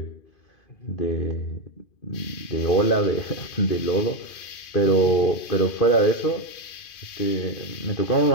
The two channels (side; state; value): right; late; 2.5 ms